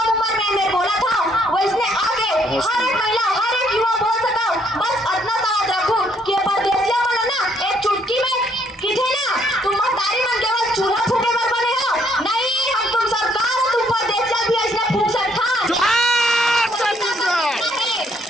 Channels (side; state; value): both; normal; correlation 0.68